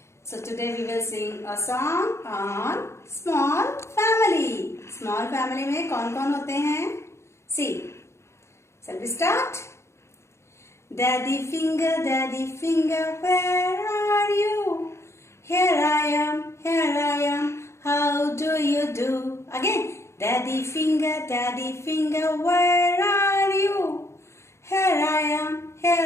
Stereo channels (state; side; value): late; right; 0.13 ms